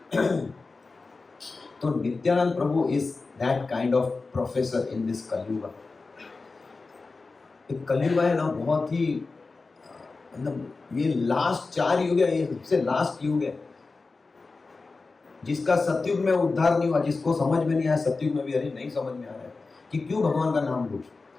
तो Nityananda Prabhu is that kind of professor in this Kaliyuga. Kaliyuga है ना, बहुत ही मतलब ये लास्ट 4 युग है, ये सबसे लास्ट युग है, जिसका सतयुग में उद्धार नहीं हुआ, जिसको समझ में नहीं आया सतयुग में भी, अरे नहीं समझ में आ रहा है कि क्यों भगवान का नाम लूं,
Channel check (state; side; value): quieter; right; 3.9 dB